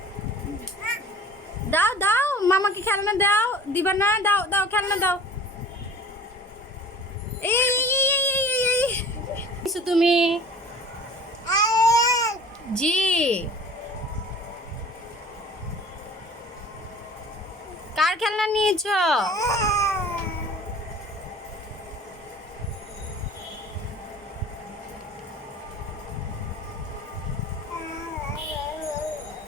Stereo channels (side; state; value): both; normal; correlation 0.44